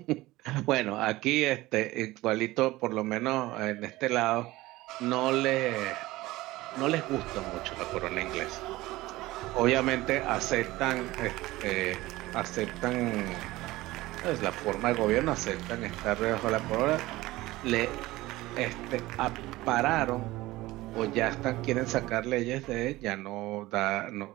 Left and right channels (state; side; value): quieter; left; 18.5 dB